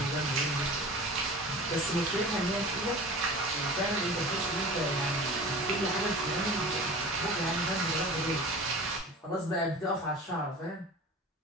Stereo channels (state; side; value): normal; both; correlation 0.37